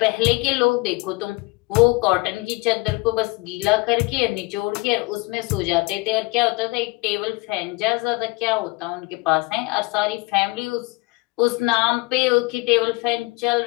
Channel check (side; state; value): right; quieter; 24.7 dB